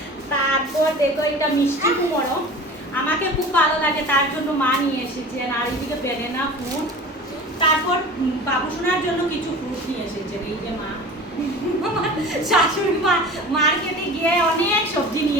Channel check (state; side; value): normal; both; correlation 0.37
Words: তারপর দেখো এটা মিষ্টি কুমড়ো, আমাকে খুব ভালো লাগে তার জন্য মা নিয়ে এসেছেন। আর এইদিকে বেদানা ফ্রুট, তারপর বাবুসোনার জন্য কিছু ফ্রুট নিয়ে এসেছেন। এই যে মা শাশুড়ি মা মার্কেটে গিয়ে অনেক সবজি